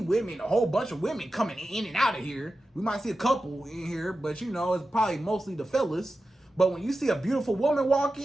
a whole bunch of women coming in and out of here. We might see a couple in here, but you know, it's probably mostly the fellas. But when you see a beautiful woman walk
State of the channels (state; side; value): normal; both; correlation 0.92